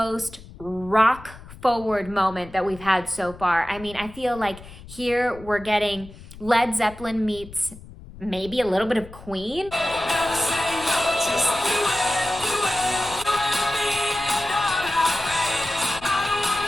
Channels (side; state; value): left; noise; rumble, 17 dB below the sound